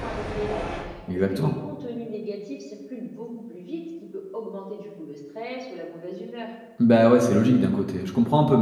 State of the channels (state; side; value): identical; both; correlation 1.00